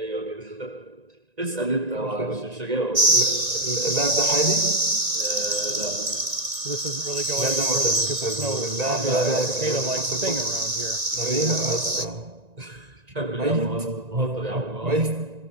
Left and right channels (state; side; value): late; left; 1.9 ms